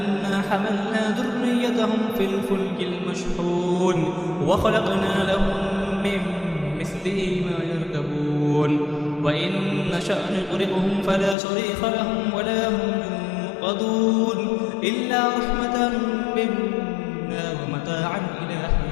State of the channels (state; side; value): drops out; right; at 11.4 s